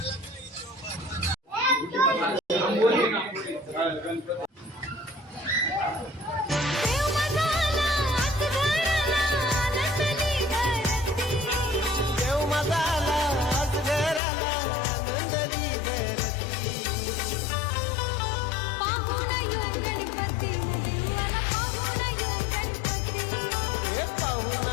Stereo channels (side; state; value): right; drops out; at 14.2 s